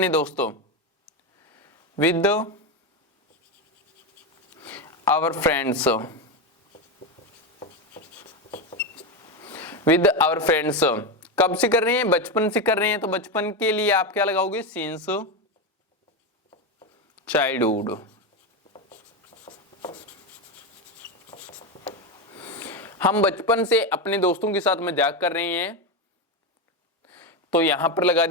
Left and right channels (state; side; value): normal; both; correlation 0.13